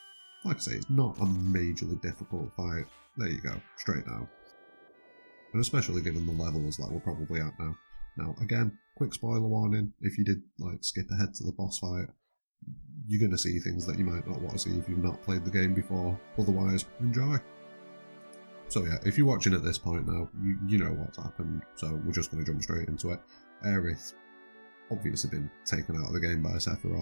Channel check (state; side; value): inverted; both; correlation -1.00